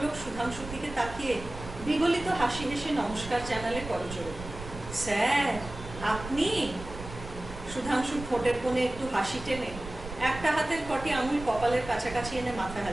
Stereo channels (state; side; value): noise; right; rumble, 12 dB below the sound